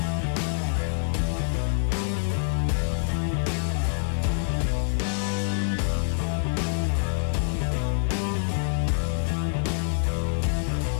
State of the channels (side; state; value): right; silent; 58 dB below the other